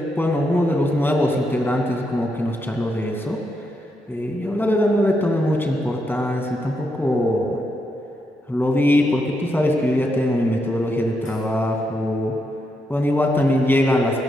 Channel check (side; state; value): both; normal; correlation 0.82